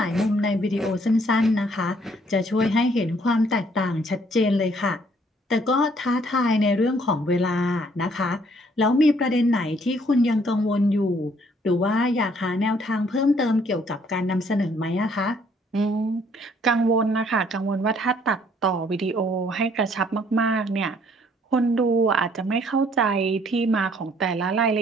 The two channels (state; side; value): normal; both; correlation 0.63